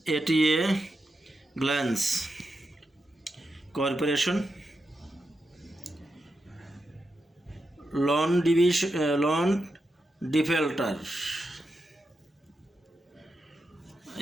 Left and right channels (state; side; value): normal; both; correlation 0.87